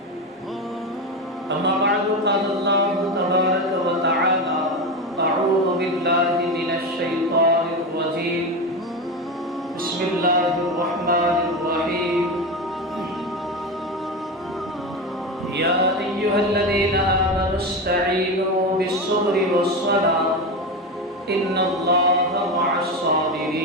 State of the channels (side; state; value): both; normal; correlation 0.19